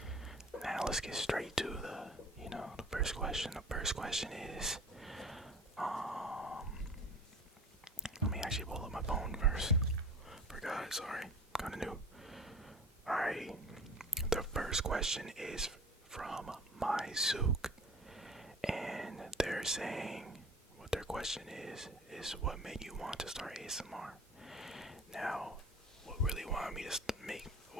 Now let's get straight to the first question. The first question is, let me actually pull up my phone first. Forgot, sorry, kinda new. Alright, the first question is from Myuk, and they're saying, what their question is what made you want to start ASMR? Now, what really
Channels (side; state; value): both; normal; correlation 0.42